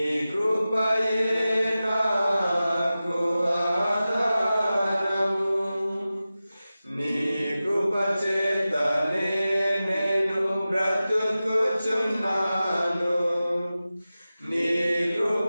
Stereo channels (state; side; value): inverted; both; correlation -0.95